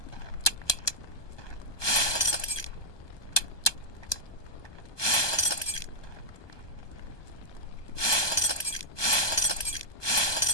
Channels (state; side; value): late; right; 1.2 ms